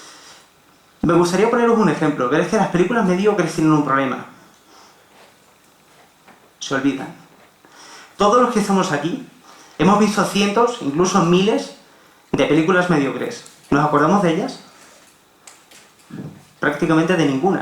Me gustaría poneros un ejemplo, pero es que las películas mediocres tienen un problema. Se olvidan. Todos los que estamos aquí hemos visto cientos, incluso miles, de películas mediocres. ¿Nos acordamos de ellas? Prácticamente de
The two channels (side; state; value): both; identical; correlation 1.00